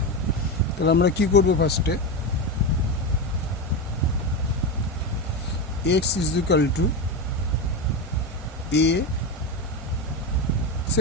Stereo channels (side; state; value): both; normal; correlation 0.16